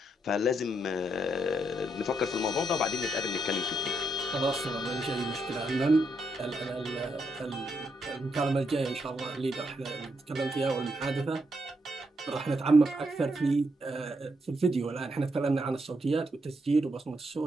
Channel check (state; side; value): normal; both; correlation 0.79